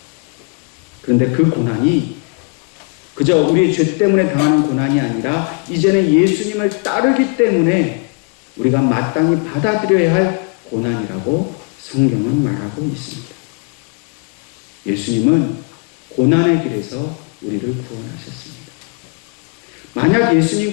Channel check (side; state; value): right; quieter; 34.0 dB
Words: 그런데 그 고난이 그저 우리의 죄 때문에 당하는 고난이 아니라 이제는 예수님을 따르기 때문에 우리가 마땅히 받아들여야 할 고난이라고 성경은 말하고 있습니다. 예수님은 고난의 길에서 우리를 구원하셨습니다. 만약